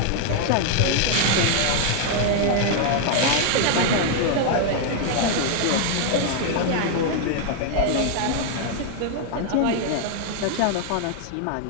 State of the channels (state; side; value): different; both; correlation 0.00